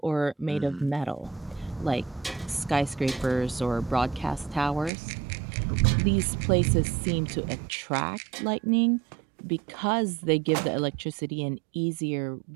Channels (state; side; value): drops out; left; at 4.9 s